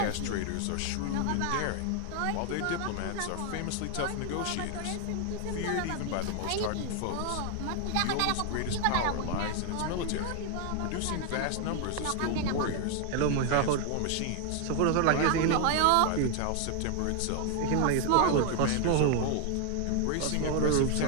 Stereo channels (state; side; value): different; both; correlation 0.00